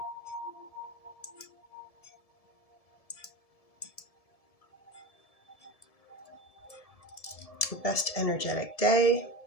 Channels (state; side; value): late; right; 1.7 ms